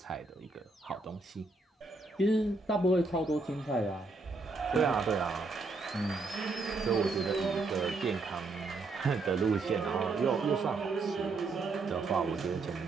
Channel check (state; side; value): quieter; left; 3.6 dB